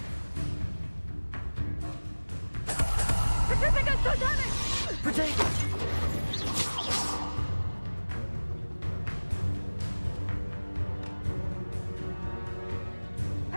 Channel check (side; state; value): both; inverted; correlation -1.00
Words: Petrificus totally! Protego.